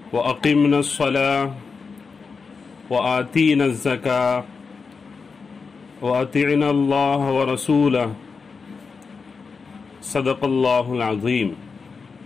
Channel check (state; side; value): quieter; right; 5.0 dB